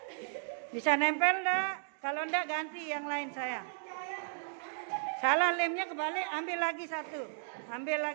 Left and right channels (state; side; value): silent; left; digital silence